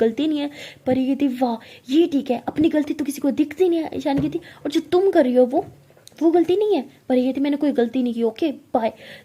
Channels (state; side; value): identical; both; correlation 1.00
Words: नहीं है। परी कहती वाह ये ठीक है, अपनी गलती तो किसी को दिखती नहीं है। ईशानी कहती और जो तुम कर रही हो वो गलती नहीं है। परी कहती मैंने कोई गलती नहीं की, ओके बाय।